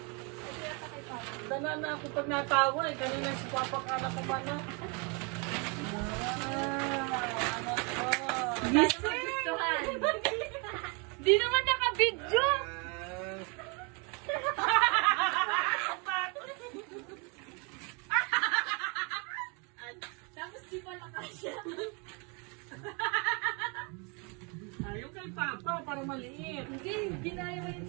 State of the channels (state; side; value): quieter; left; 32.9 dB